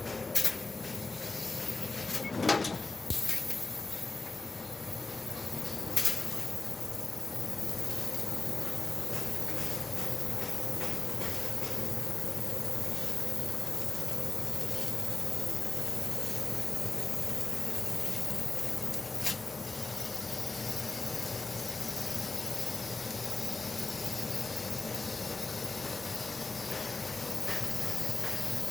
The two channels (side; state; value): right; quieter; 3.6 dB